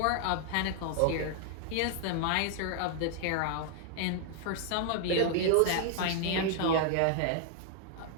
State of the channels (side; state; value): both; different; correlation 0.00